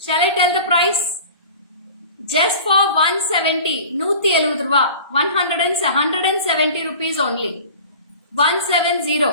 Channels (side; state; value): both; inverted; correlation -0.40